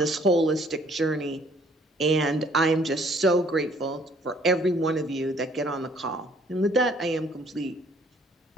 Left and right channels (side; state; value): both; normal; correlation 0.60